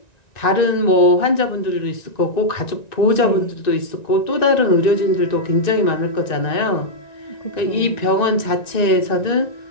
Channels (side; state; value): right; late; 1.9 ms